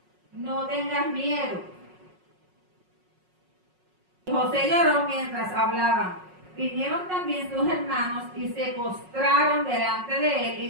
no tengas miedo. José lloró mientras hablaban. Vinieron también sus hermanos y se postraron delante de él y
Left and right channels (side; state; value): left; late; 5.5 ms